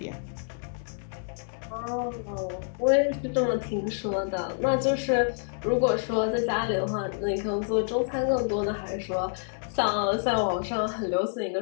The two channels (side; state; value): right; silent; digital silence